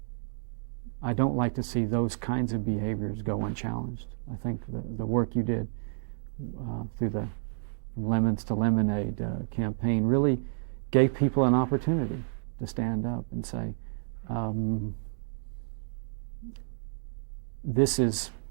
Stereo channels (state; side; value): silent; left; digital silence